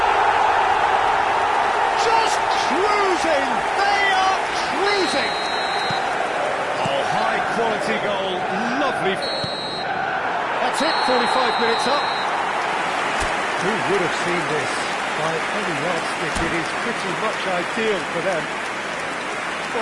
They are cruising! Oh, high-quality goal, lovely. That's it, 45 minutes up. Who would have seen this? By any yardstick, it is pretty much ideal for them.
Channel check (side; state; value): both; identical; correlation 1.00